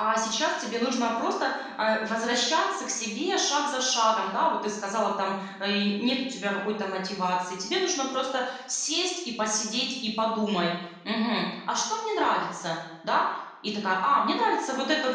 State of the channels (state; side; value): identical; both; correlation 1.00